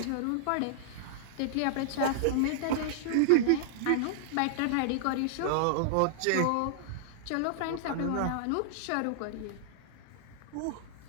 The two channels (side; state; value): both; different; correlation -0.01